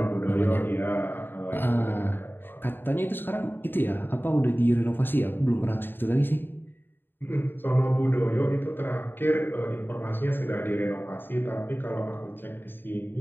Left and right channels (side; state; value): right; late; 0.097 ms